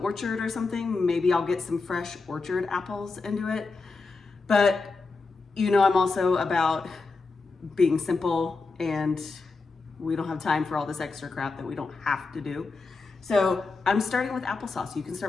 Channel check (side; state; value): right; quieter; 4.0 dB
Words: or something, maybe I'll get some fresh orchard apples and do it. But you know, I'm also about being simple, and we don't have time for all this extra crap that we don't have to do. So I'm starting with applesauce. You can